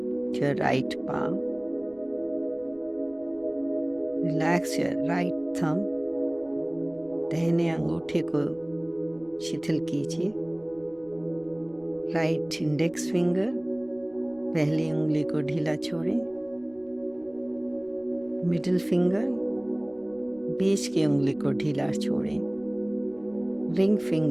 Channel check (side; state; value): right; noise; rumble, 28 dB below the sound